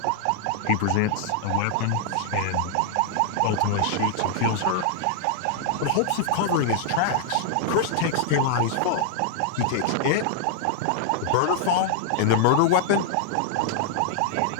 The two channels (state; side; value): different; both; correlation -0.01